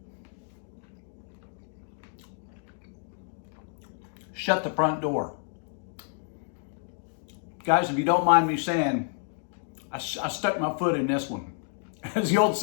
Shut the front door. Guys, if you don't mind me saying, I stuck my foot in this one. As the old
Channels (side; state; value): right; silent; 58 dB below the other